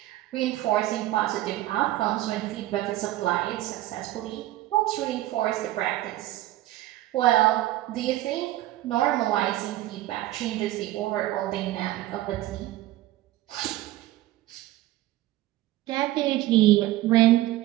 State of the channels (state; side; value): quieter; left; 15.7 dB